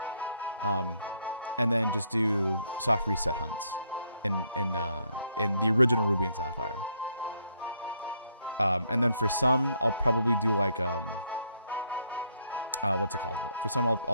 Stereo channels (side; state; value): both; inverted; correlation -0.72